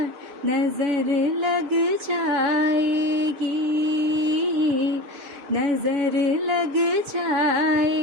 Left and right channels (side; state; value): left; late; 6.9 ms